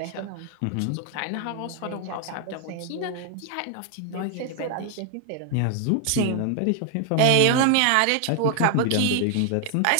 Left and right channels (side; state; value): both; different; correlation 0.00